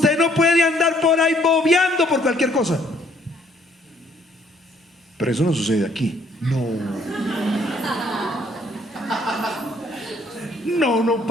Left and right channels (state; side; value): normal; both; correlation 0.64